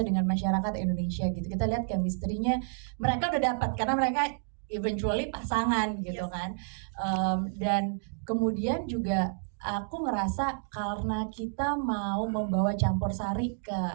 dengan masyarakat Indonesia gitu. Kita lihat chemistry-nya mereka udah dapat karena mereka eventually pasangan gitu kan. Dan kemudian juga aku ngerasa karena kita mau membawa campur sari ke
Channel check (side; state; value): left; silent; digital silence